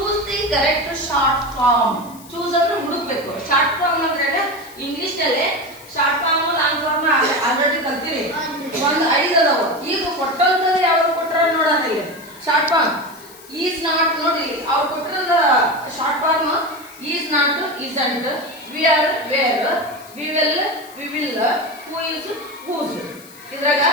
the correct short form. Choose ಅಂದ್ರೆ ಹುಡುಕ್ಬೇಕು. ಶಾರ್ಟ್ ಫಾರ್ಮ್ ಅಂದ್ರೆ ಇಂಗ್ಲಿಷ್ ನಲ್ಲಿ short form long form already ಕಲ್ತೀರಿ. ಒಂದು 5 ಅದಾವ. ಈಗ ಕೊಟ್ಟಂತದ್ದು ಯಾವ್ದು ಕೊಟ್ಟಾರ ನೋಡೋಣ. Short form is not. ನೋಡಿ ಅವ್ರು ಕೊಟ್ಟಿರೋದ short form is not, isn't, we are, we're, we will, we will, who is, who's. ಇದ್ರಾಗ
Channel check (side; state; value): left; noise; hiss, 21 dB below the sound